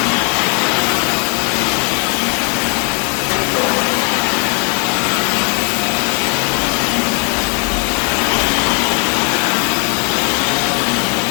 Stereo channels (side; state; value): right; quieter; 39.6 dB